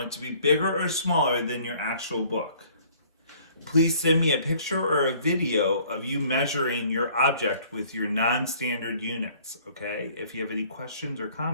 it to be bigger or smaller than your actual book. Please send me a picture or a video of you measuring your object with your non-standard units, okay? If you have any questions or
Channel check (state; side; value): inverted; both; correlation -0.56